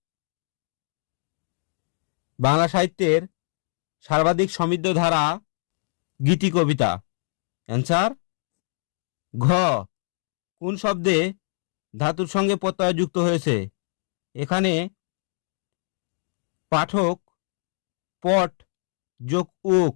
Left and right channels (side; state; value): right; silent; digital silence